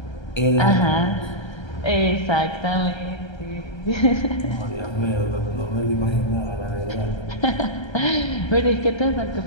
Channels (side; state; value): right; late; 1.3 ms